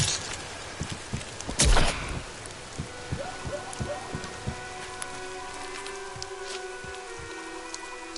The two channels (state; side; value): identical; both; correlation 1.00